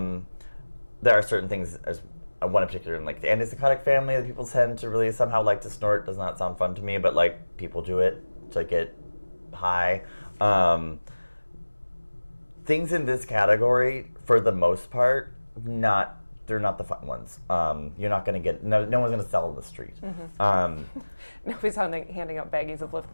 are certain things, as one in particular in like the antipsychotic family that people tend to really somehow like to snort. Does not sound fun to me, but like people do it to get high. Things in this category, for the most part, they're not the fun ones. You're not going to get, no one's going to sell in the street. Nobody's handing out baggies of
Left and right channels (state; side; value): inverted; both; correlation -1.00